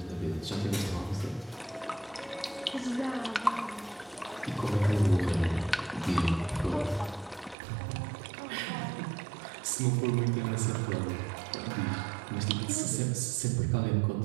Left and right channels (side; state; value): left; drops out; at 7.6 s